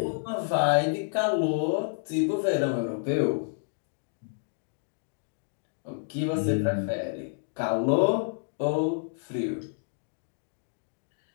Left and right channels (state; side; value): silent; right; digital silence